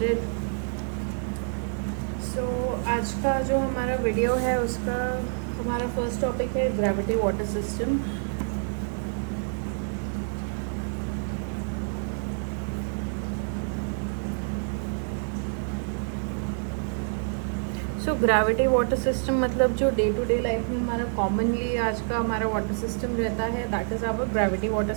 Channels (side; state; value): left; silent; 60 dB below the other